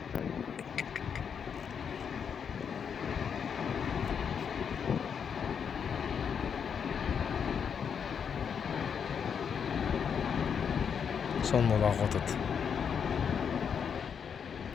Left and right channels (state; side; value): quieter; right; 7.1 dB